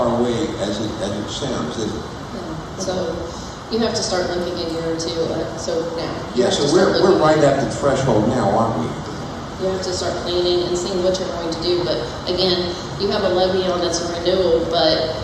away as it sounds, is it? No. So you have to start looking a year or two. So now. Yeah. So we're right at the threshold now, aren't we? You have to start planning and seeing what you're going to do. But again, you have a levy on that's a renewal, but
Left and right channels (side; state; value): both; identical; correlation 1.00